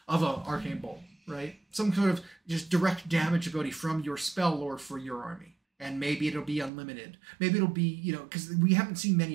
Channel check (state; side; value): drops out; left; at 6.7 s